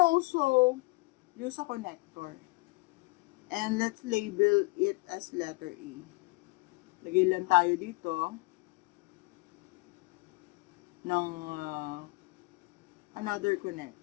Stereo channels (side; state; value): right; quieter; 24.4 dB